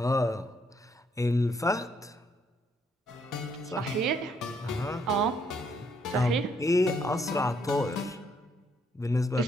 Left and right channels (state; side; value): normal; both; correlation 0.71